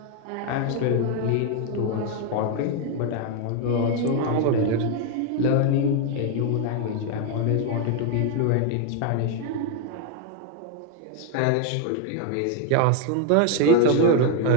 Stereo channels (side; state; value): both; different; correlation 0.01